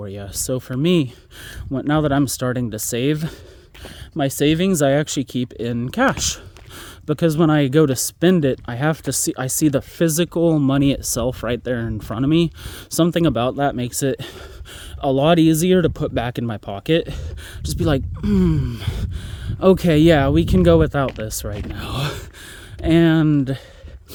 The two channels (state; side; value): identical; both; correlation 1.00